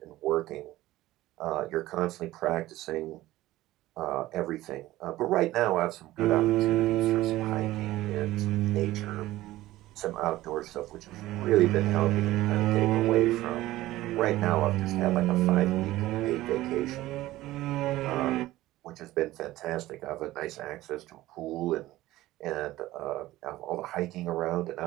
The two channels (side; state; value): left; quieter; 16.5 dB